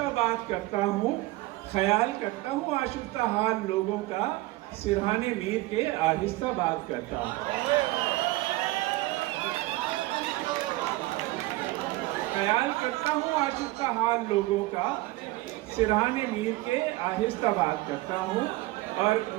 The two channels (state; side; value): quieter; left; 19.4 dB